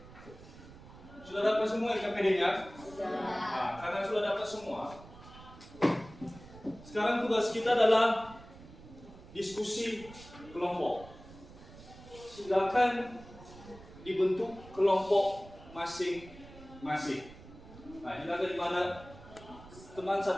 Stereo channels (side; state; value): right; noise; rumble, 18 dB below the sound